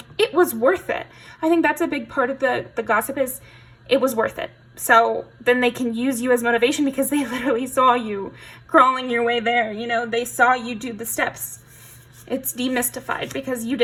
it was worth it. I think that's a big part of the gossip is it was worth it. So then they can use you as motivation because they literally saw you crawling your way there. You know, they saw you do the steps. It's demystified because you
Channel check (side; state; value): both; identical; correlation 1.00